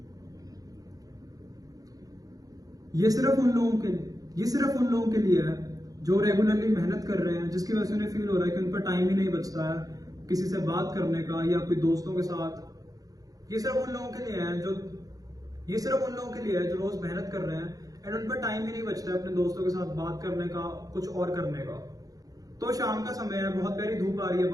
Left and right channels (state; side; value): late; left; 0.17 ms